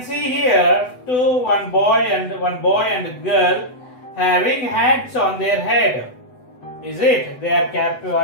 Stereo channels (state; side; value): late; right; 8.0 ms